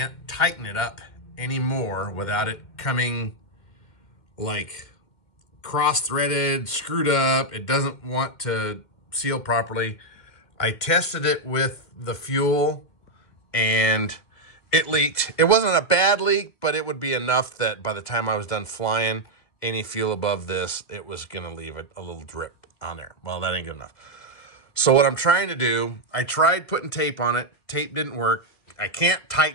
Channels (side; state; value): right; late; 2.0 ms